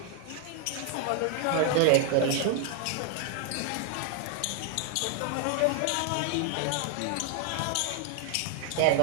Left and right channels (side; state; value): both; different; correlation 0.00